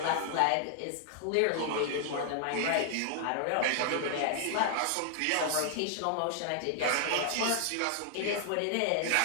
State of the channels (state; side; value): different; both; correlation 0.00